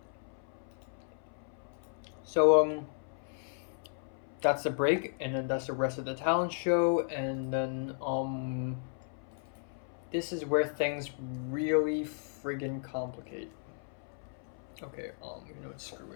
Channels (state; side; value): silent; right; 55 dB below the other